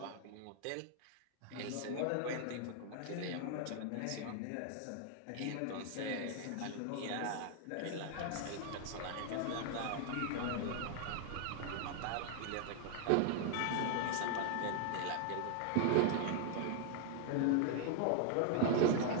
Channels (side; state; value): both; different; correlation 0.00